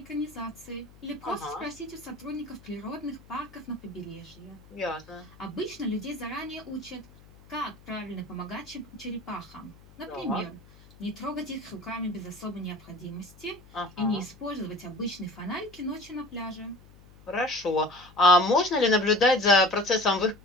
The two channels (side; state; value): left; noise; hum, 23 dB below the sound